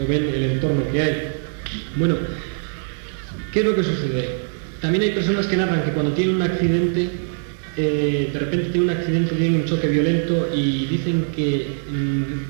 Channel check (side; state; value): left; silent; digital silence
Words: o ven el entorno que hay. Bueno, ¿qué es lo que sucede? También hay personas que narran que cuando tienen un accidente, de repente tienen un accidente, tienen un choque violento y dicen que